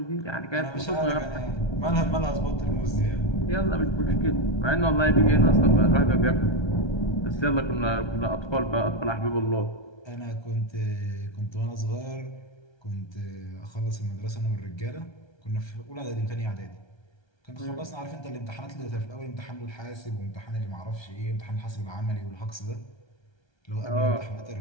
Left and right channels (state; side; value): late; right; 1.3 ms